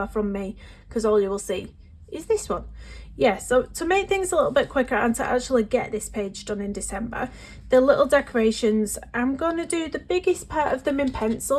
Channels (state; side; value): identical; both; correlation 1.00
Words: from me, because all you will see is this one. Yeah, so to make things a little bit quicker and to actually get this page done in December, the little decorations, I'm going to do the biggest part of them in